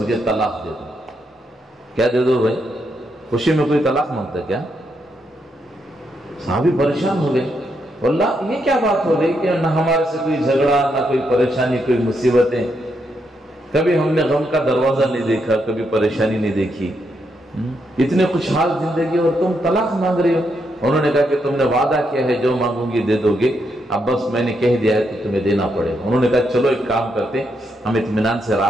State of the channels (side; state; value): both; normal; correlation 0.79